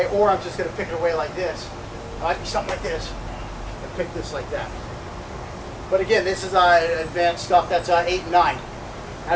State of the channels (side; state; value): both; identical; correlation 1.00